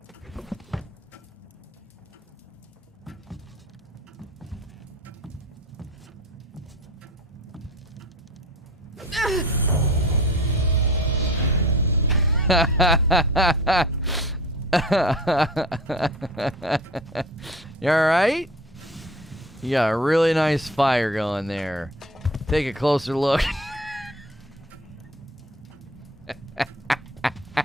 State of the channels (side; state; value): both; normal; correlation 0.40